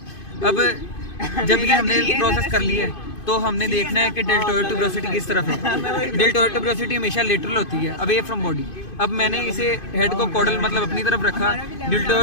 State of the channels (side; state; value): right; late; 2.5 ms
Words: अब जब ये हमने प्रोसेस कर लिया है तो हमने देखना है कि डेल्टोइड ट्यूबरोसिटी किस तरफ है। डेल्टोइड ट्यूबरोसिटी हमेशा लेटरल होती है, अवे फ्रॉम बॉडी। अब मैंने इसे हेड को कॉर्डल मतलब अपनी तरफ रखा,